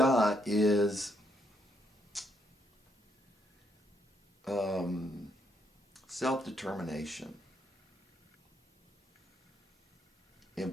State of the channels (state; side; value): normal; both; correlation 0.74